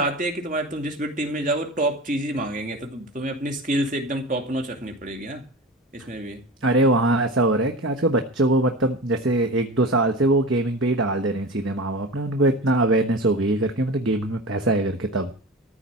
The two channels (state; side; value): normal; both; correlation 0.30